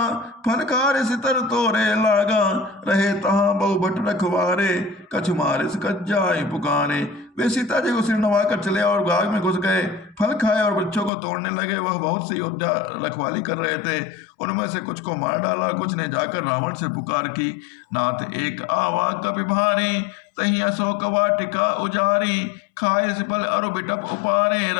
फनकार सितर तोरे लागा, रहे तहाँ बहु भट रखवारे, कछु मारे से कच जाए पुकारे। वे सीता जी को सिर नवा कर चले और बाग में घुस गए, फल खाए और बच्चों को तोड़ने लगे। वह बहुत से योद्धा रखवाली कर रहे थे, उनमें से कुछ को मार डाला, कुछ ने जाकर रावण से पुकार की, नाथ एक आवा कपि भारी, तही अशोक वाटिका उजारी, खाए से फल अरु बिटप उपारे,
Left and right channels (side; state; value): right; drops out; at 11.1 s